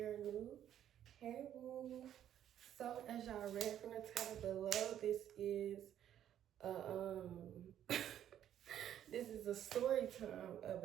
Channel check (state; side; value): quieter; left; 10.7 dB